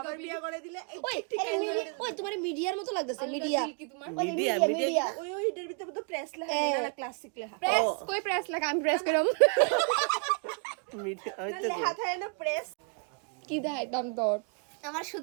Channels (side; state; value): left; quieter; 35.6 dB